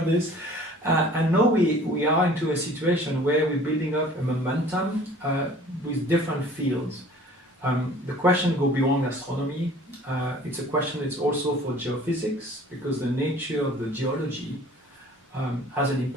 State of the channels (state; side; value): normal; both; correlation 0.49